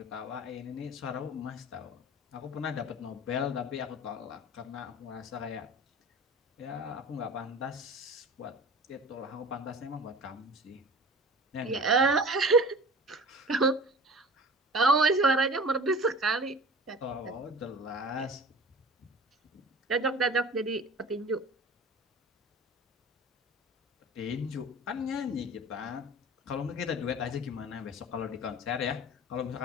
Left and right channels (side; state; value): both; normal; correlation 0.40